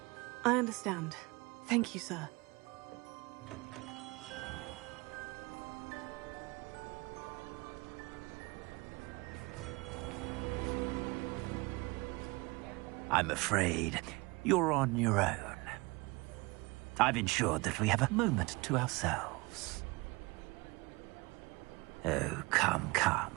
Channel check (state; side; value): quieter; left; 24.9 dB